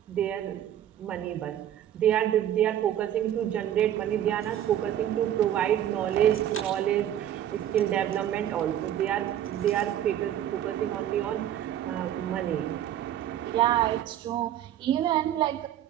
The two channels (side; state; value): left; quieter; 11.2 dB